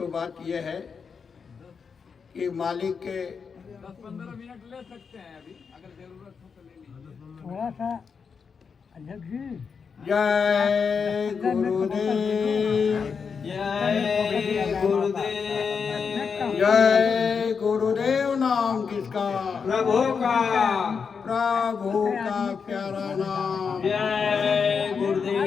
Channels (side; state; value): right; quieter; 5.9 dB